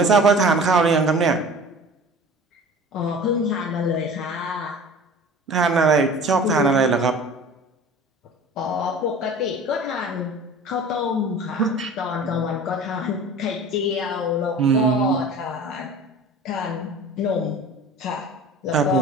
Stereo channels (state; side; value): normal; both; correlation 0.41